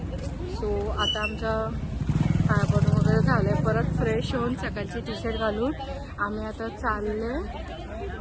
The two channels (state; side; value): identical; both; correlation 1.00